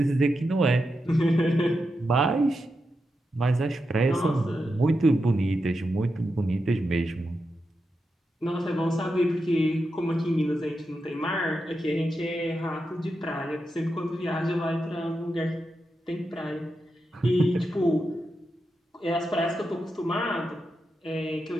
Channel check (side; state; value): both; normal; correlation 0.87